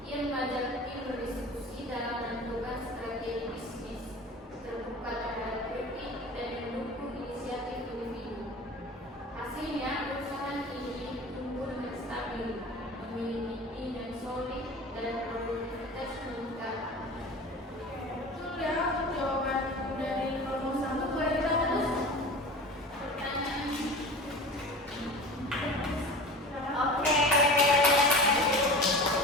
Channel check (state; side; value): normal; both; correlation 0.36